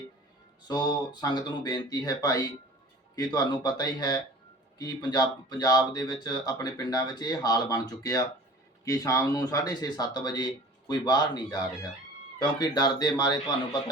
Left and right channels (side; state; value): both; normal; correlation 0.43